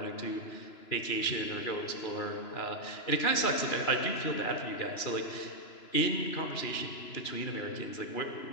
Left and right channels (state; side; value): late; right; 2.9 ms